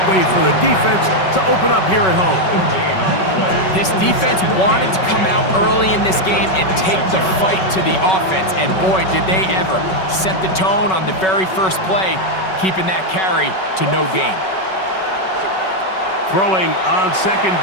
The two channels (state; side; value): late; right; 5.3 ms